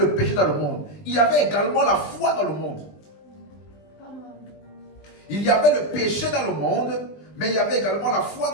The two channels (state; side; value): late; right; 20 ms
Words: le péché dans le monde. Il y avait également la foi dans le monde. Il y avait le péché dans le monde, mais il y avait également la foi